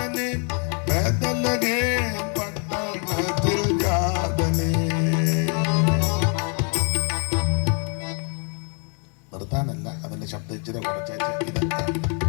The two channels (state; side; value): quieter; right; 39.8 dB